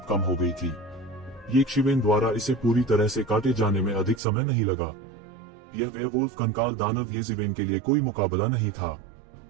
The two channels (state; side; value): drops out; left; at 4.2 s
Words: कम हो गई थी। यक्षिवन द्वारा इसे पूरी तरह से काटे जाने में अधिक समय नहीं लगा। यह वेयरवुल्फ कंकाल दानव यक्षिवन के लिए कोई मुकाबला नहीं था।